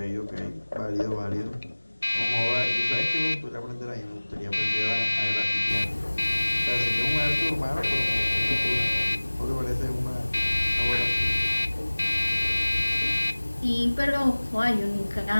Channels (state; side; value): inverted; both; correlation -1.00